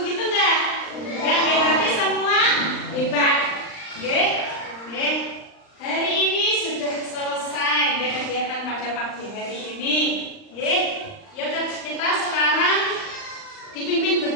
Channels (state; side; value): late; right; 39 ms